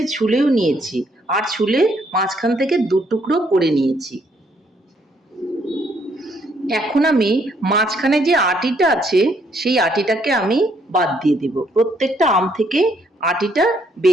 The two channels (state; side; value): normal; both; correlation 0.70